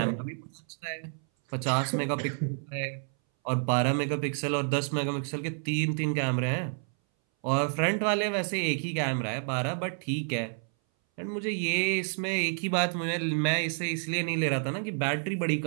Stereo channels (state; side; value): silent; left; 58 dB below the other